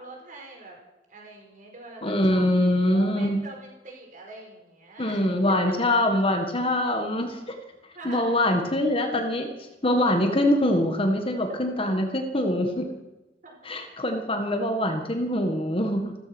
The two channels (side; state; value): both; normal; correlation 0.54